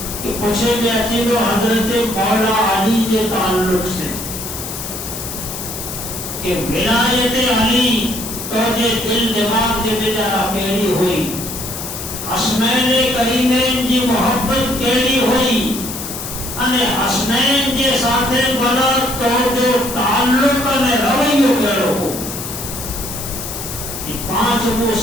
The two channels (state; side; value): noise; left; hiss, 8 dB below the sound